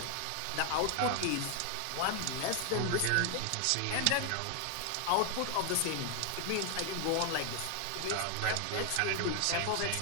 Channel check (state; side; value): different; both; correlation 0.00